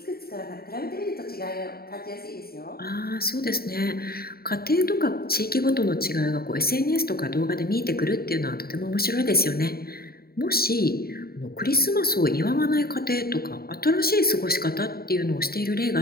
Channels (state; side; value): late; right; 0.45 ms